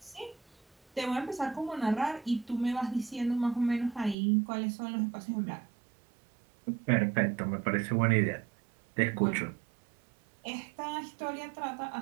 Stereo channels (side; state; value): left; drops out; at 4.2 s